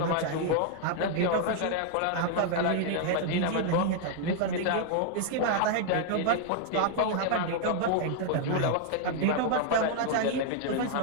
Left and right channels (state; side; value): different; both; correlation 0.00